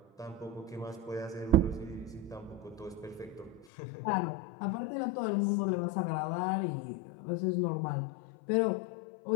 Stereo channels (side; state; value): right; drops out; at 3.7 s